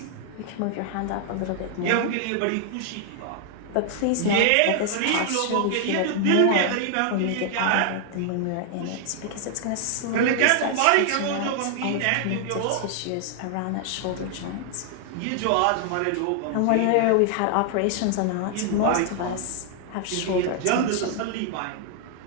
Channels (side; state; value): both; different; correlation 0.00